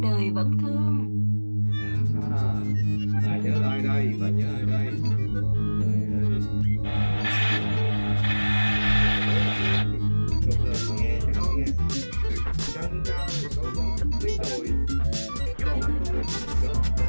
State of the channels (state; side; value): inverted; both; correlation -1.00